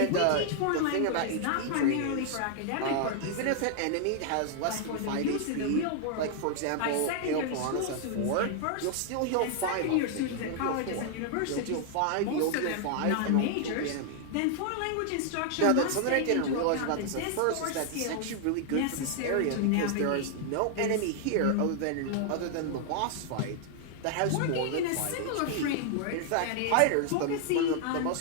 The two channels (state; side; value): different; both; correlation 0.00